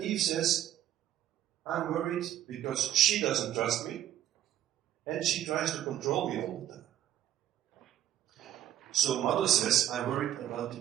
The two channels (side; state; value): left; quieter; 11.8 dB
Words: Eve says, I'm worried because she doesn't trust me, and she tries to control me all the time. So mother says, I'm worried about